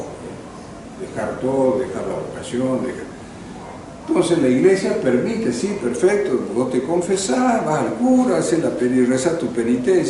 dejar todo, dejar la vocación, Entonces la iglesia permite, sí, perfecto, vos te confesás, vas al cura, haces rezás tu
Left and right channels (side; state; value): both; identical; correlation 1.00